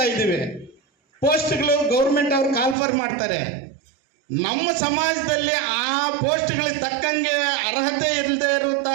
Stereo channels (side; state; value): left; drops out; at 2.8 s